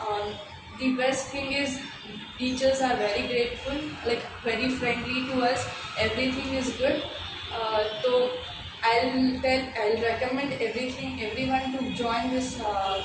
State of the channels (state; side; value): identical; both; correlation 1.00